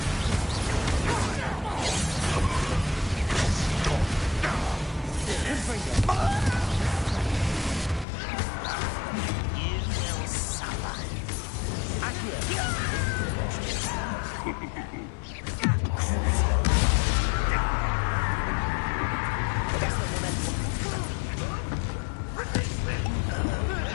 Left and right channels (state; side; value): drops out; right; at 8.1 s